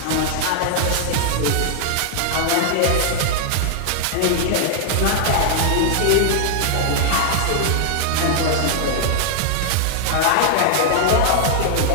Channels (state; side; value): different; both; correlation -0.01